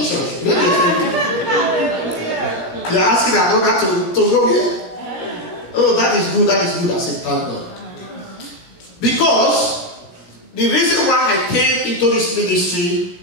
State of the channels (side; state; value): right; late; 17 ms